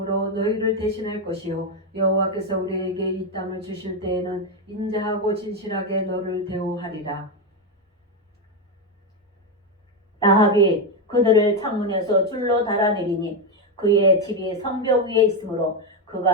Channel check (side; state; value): both; normal; correlation 0.07